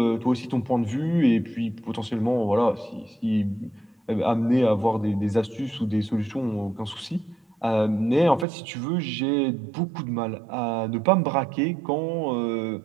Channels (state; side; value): drops out; left; at 8.5 s